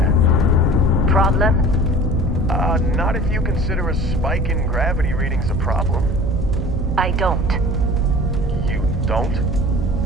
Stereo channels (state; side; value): noise; right; hum, 5 dB below the sound